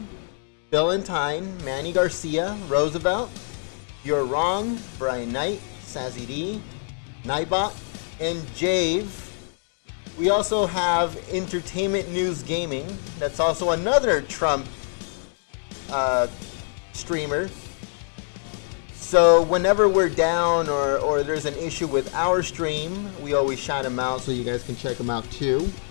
Billentine, Manny Garcia, Roosevelt, You're Wrong, Brian Knight, Sassy D, Nightbot, and Jave. We also have Entertainment News Gaming. That's also another Trump streamer. So whenever we're down or there's an issue with our stream, we always shout them out so you guys can check them out too.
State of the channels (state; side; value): silent; right; 61 dB below the other